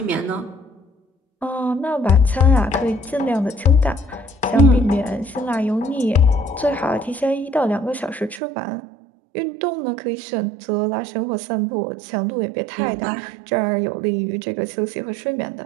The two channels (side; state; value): left; drops out; at 8.4 s